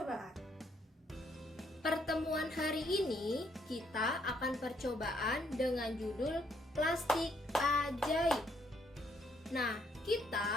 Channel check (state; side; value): normal; both; correlation 0.71